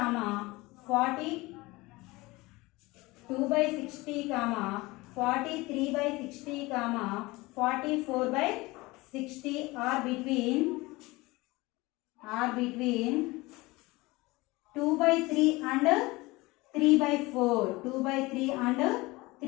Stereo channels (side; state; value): right; quieter; 21.8 dB